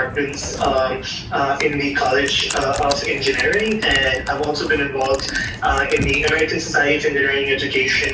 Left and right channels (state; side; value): identical; both; correlation 1.00